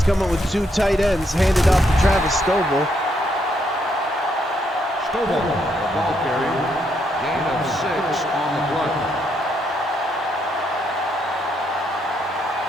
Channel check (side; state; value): both; normal; correlation 0.75